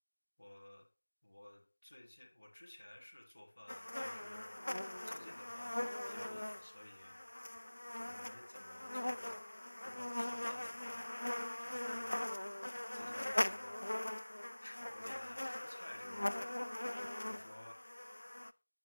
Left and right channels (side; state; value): both; inverted; correlation -1.00